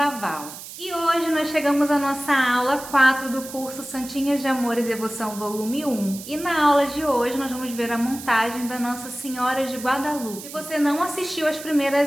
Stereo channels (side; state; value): right; noise; hiss, 13 dB below the sound